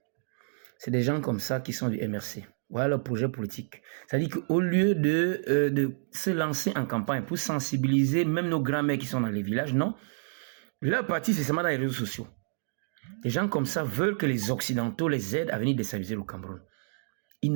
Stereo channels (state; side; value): silent; left; digital silence